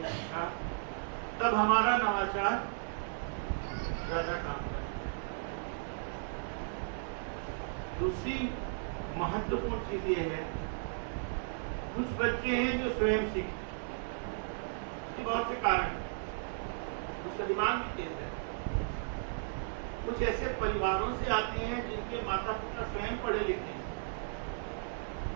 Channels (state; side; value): silent; left; 54 dB below the other